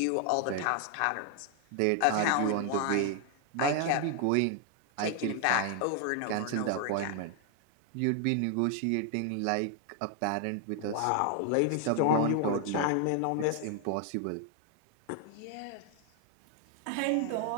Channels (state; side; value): different; both; correlation 0.00